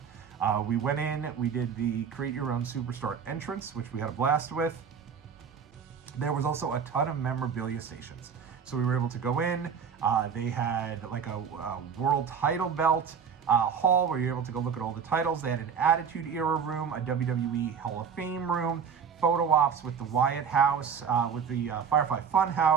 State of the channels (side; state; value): left; quieter; 6.8 dB